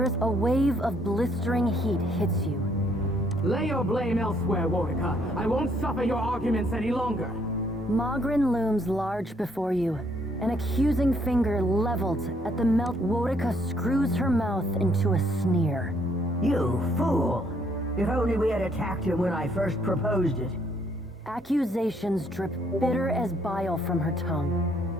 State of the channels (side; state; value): both; normal; correlation 0.68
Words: is a wave of blistering heat hits you. Lay your blame elsewhere, Warwicker. I won't suffer your arguments any longer. Mogren looms large before you, an accusing finger leveled at the melt. Warwicker screws her mouth into a sneer. You fool! If only we had attacked him when I first proposed it. Accusations drip bitter as bile from her tongue.